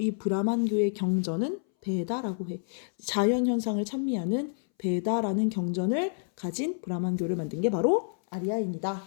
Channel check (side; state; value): right; silent; 59 dB below the other